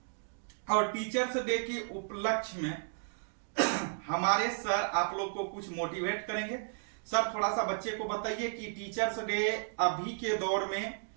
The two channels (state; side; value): silent; left; digital silence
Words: और टीचर्स डे के उपलक्ष्य में हमारे सर आप लोग को कुछ मोटिवेट करेंगे। सर थोड़ा सा बच्चे को बताइए कि टीचर्स डे अभी के दौर में